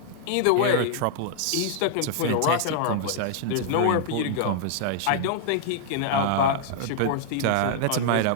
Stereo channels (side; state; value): both; different; correlation -0.01